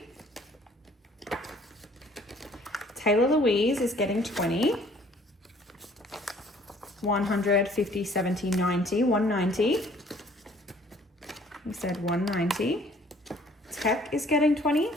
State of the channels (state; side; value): normal; both; correlation 0.57